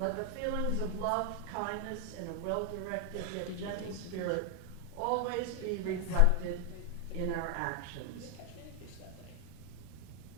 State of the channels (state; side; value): different; both; correlation 0.00